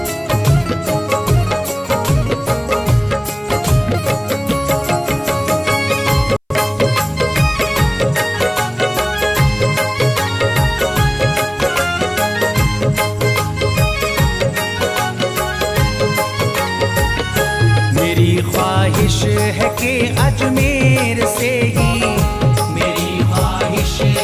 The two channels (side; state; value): both; identical; correlation 1.00